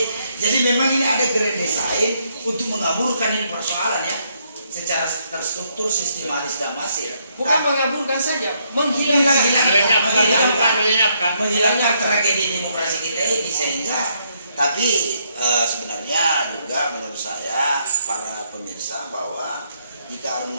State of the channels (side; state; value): both; inverted; correlation -0.73